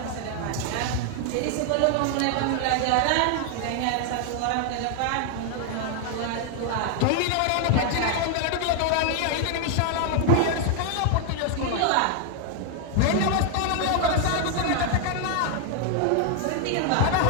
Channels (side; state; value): both; different; correlation 0.00